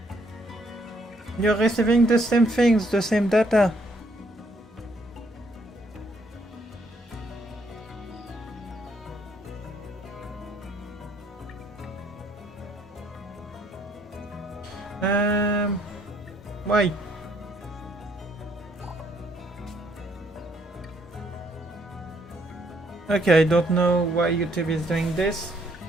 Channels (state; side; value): normal; both; correlation 0.69